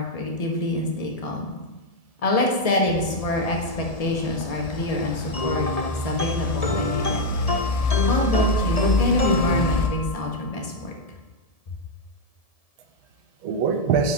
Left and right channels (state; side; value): late; right; 1.7 ms